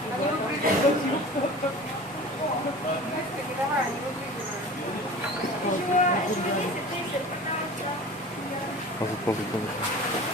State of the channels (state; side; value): normal; both; correlation 0.38